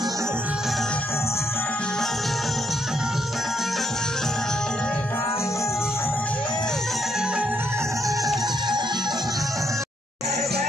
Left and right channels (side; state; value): both; normal; correlation 0.74